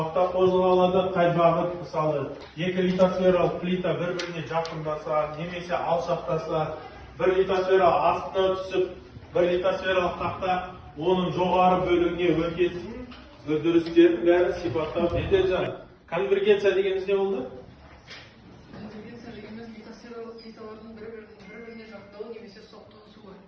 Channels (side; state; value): both; identical; correlation 1.00